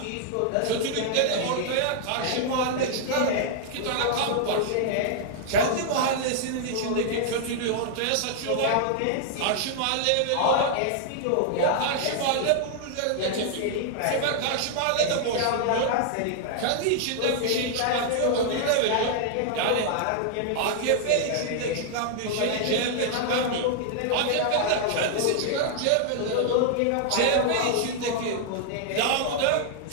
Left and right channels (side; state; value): both; different; correlation -0.01